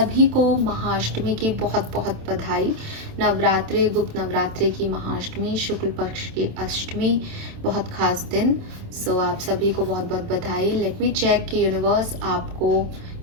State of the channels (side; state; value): left; late; 27 ms